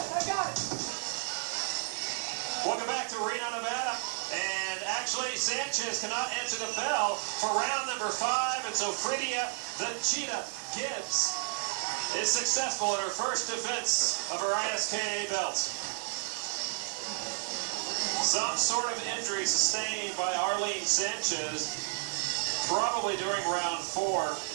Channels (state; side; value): silent; left; 57 dB below the other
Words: got it. Welcome back to Reno, Nevada. And actually, Sanchez cannot answer the bell for round number 5. And so Fredia, the Cheetah Gibbs, is successful in her first defense of her ISKA belt. Some sort of injury sustained by Arlene Sanchez, probably during round 4,